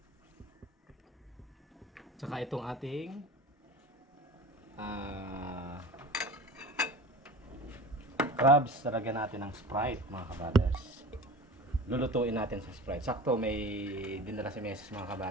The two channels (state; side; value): normal; both; correlation 0.36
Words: Tsaka itong ating crabs, talagyan natin ng Sprite mga ka-brothers. Lulutuin natin sa Sprite. Sakto may dinala si Mrs. mga